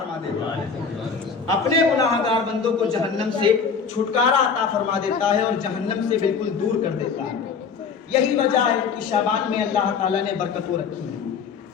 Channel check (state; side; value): quieter; right; 5.9 dB